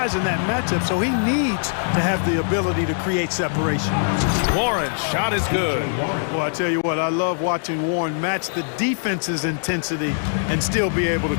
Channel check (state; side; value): silent; right; digital silence